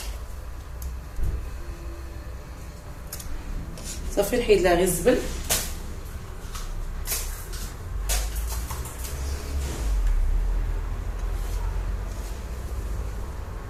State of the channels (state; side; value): identical; both; correlation 1.00